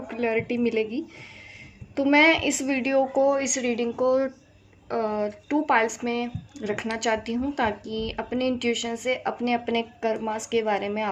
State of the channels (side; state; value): both; identical; correlation 1.00